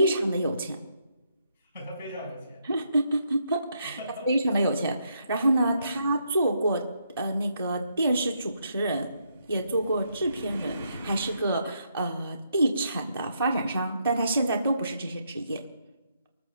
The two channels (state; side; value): inverted; both; correlation -0.76